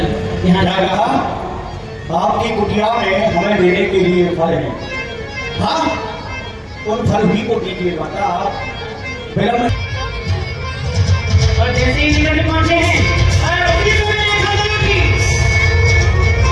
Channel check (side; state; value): both; identical; correlation 1.00